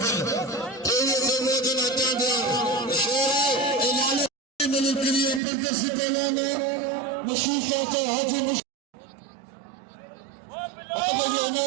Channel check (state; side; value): drops out; left; at 5.4 s